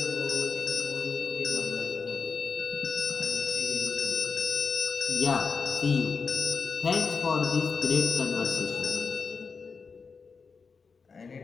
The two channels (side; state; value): right; quieter; 5.1 dB